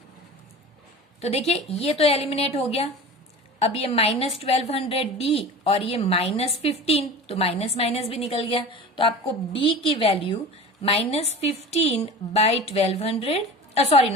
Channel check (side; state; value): both; normal; correlation 0.35